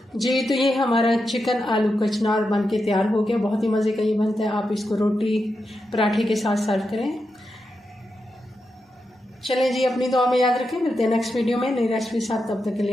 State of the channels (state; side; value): normal; both; correlation 0.87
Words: जी, तो ये हमारा चिकन आलू कचनार बन के तैयार हो गया। बहुत ही मज़े का ये बनता है। आप इसको रोटी पराठे के साथ सर्व करें। चलें जी, अपनी दुआ में याद रखें। मिलते हैं नेक्स्ट वीडियो में नई रेसिपी साथ। तब तक के